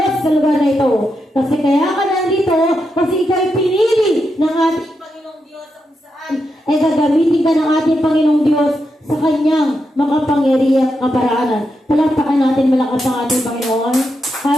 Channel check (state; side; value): normal; both; correlation 0.85